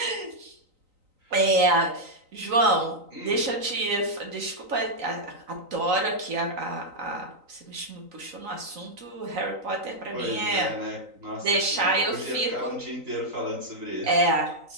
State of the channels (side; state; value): left; late; 3.9 ms